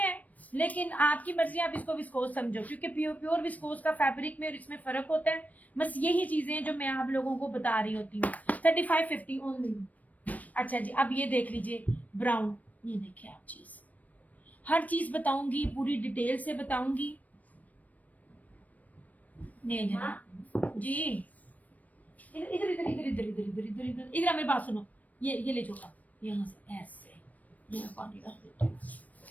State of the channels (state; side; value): late; right; 0.073 ms